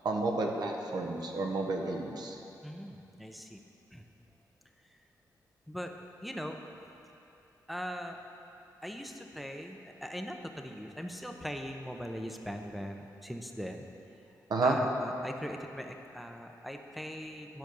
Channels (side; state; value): both; normal; correlation 0.76